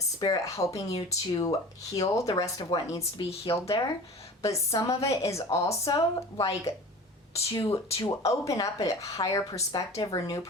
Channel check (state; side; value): normal; both; correlation 0.38